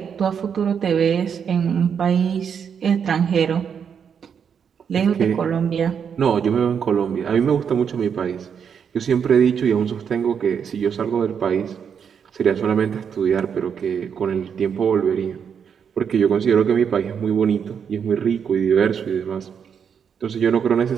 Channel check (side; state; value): left; quieter; 7.3 dB